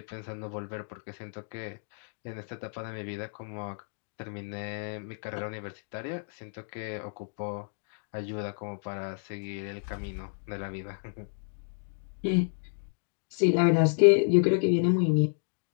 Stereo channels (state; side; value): silent; right; digital silence